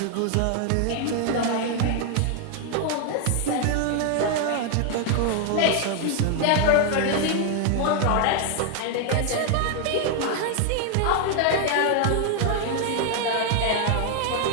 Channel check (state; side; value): different; both; correlation 0.00